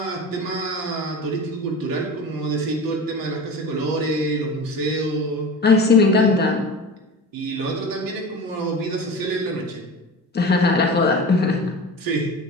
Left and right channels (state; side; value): normal; both; correlation 0.32